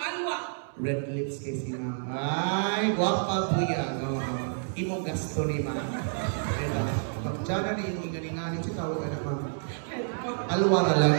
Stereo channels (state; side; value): silent; left; 59 dB below the other